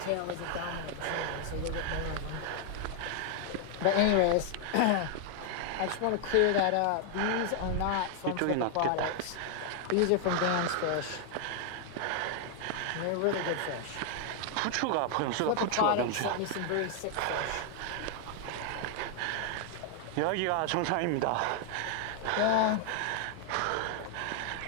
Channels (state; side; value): different; both; correlation 0.00